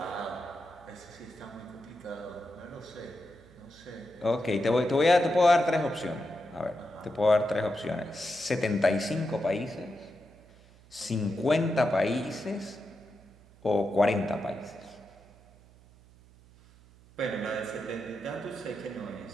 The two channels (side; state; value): right; noise; hum, 25 dB below the sound